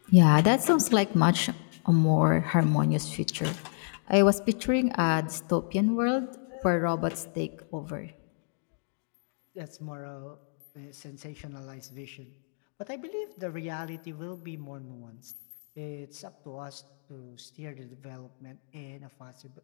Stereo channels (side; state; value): right; silent; digital silence